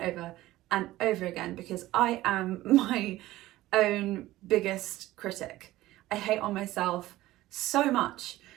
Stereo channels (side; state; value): left; quieter; 16.4 dB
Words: and over again because I am my own biggest critic. I hate on myself so much,